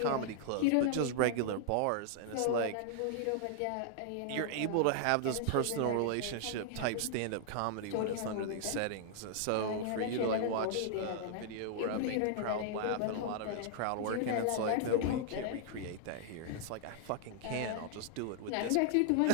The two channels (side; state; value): both; different; correlation -0.01